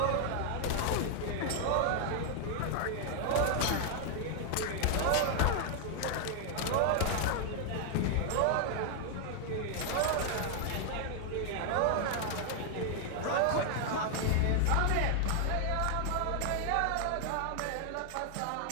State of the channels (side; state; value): both; different; correlation 0.00